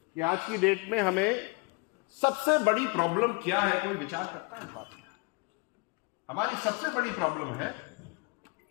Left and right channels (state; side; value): quieter; right; 29.2 dB